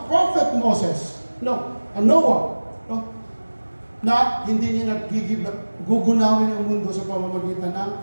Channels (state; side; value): inverted; both; correlation -1.00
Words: Prophet Moses. Noah. No? Na hindi niya gugunawin ang mundo sa pamamagitan ng